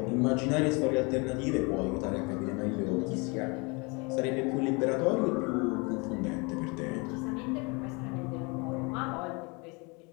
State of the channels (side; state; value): right; quieter; 29.5 dB